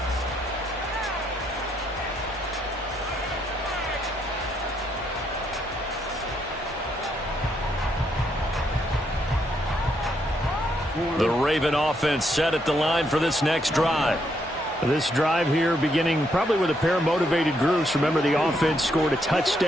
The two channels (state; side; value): normal; both; correlation 0.76